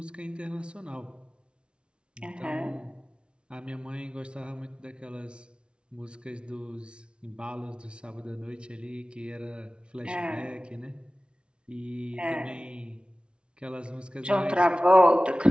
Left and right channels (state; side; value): late; left; 0.057 ms